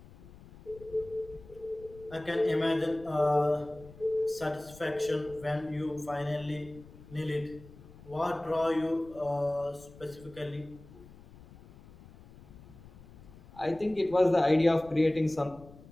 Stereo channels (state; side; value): noise; left; rumble, 20 dB below the sound